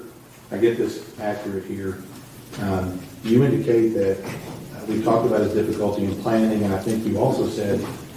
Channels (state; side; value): identical; both; correlation 1.00